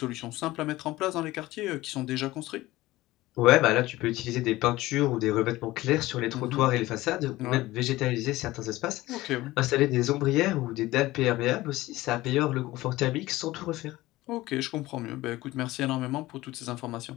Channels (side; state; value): right; quieter; 18.0 dB